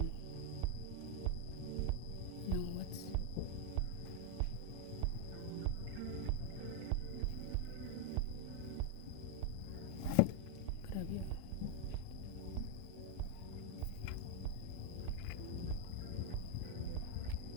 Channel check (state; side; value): different; both; correlation 0.00